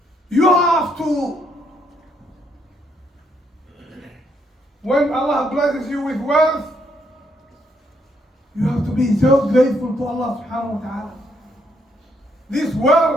You have to, when Allah blesses you with wealth, you have to be so grateful to Allah subhanahu wa ta'ala. This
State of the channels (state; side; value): normal; both; correlation 0.73